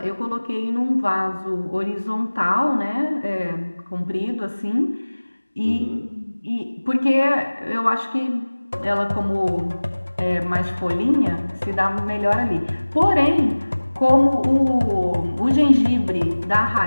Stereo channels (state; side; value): inverted; both; correlation -1.00